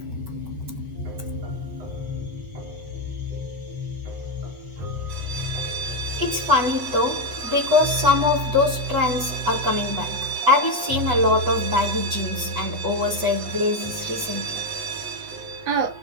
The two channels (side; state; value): left; late; 8.1 ms